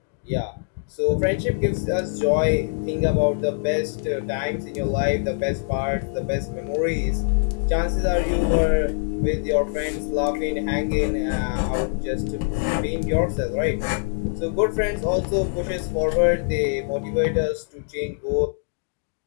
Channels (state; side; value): silent; right; digital silence